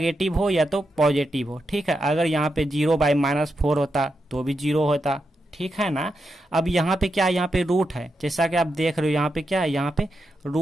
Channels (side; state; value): both; normal; correlation 0.86